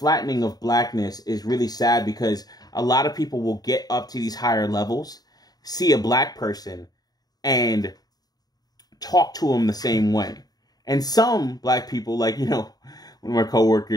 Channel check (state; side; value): late; right; 0.19 ms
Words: of blackness is really sad because a lot of people will get up to these higher levels, see a black person, and talk to them the same way. And some black people, like, one of my